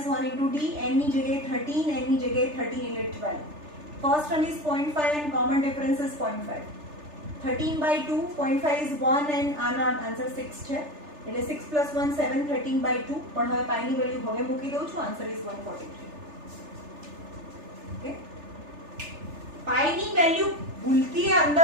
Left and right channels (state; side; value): late; left; 3.4 ms